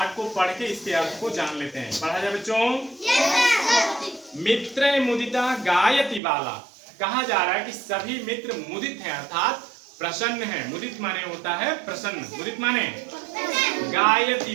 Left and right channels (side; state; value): left; drops out; at 6.2 s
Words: को पढ़ के इसके अर्थ को जान लेते हैं। पढ़ा जाए बच्चों। मित्र मुदिता गायति बाला, कहा जा रहा है कि सभी मित्र मुदित हैं अर्थात प्रसन्न है। मुदित माने होता है प्रसन्न, मुदित माने